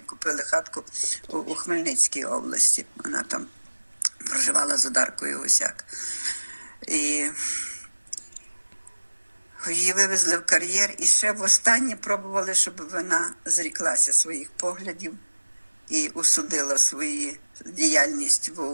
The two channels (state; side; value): inverted; both; correlation -1.00